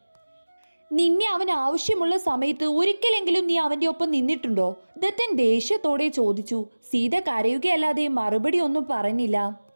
നിന്നെ അവൻ ആവശ്യമുള്ള സമയത്ത് ഒരിക്കലെങ്കിലും നീ അവന്റെ ഒപ്പം നിന്നിട്ടുണ്ടോ? ദത്തൻ ദേഷ്യത്തോടെ ചോദിച്ചു. സീത കരയുകയല്ലാതെ മറുപടി ഒന്നും പറഞ്ഞില്ല.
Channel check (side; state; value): both; inverted; correlation -1.00